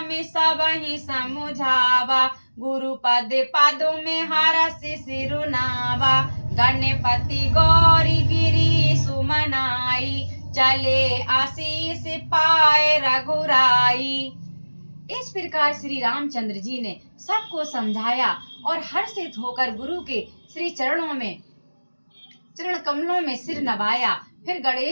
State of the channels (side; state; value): both; inverted; correlation -1.00